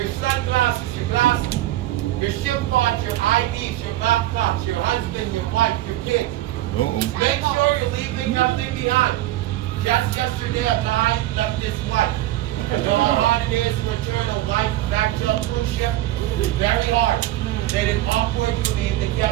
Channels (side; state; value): left; quieter; 15.2 dB